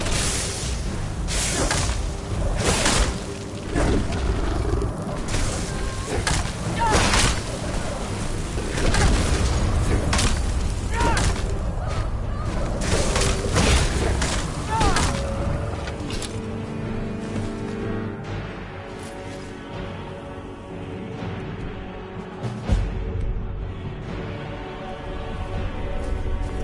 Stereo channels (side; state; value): both; identical; correlation 1.00